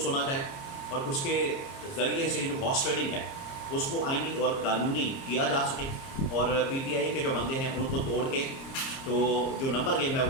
सुना जाए और उसके ज़रिए से जो हॉर्स ट्रेडिंग है उसको आईनी और कानूनी किया जा सके और PTI के जो बंदे हैं उनको तोड़ के तो जो नंबर गेम है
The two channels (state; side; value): late; right; 30 ms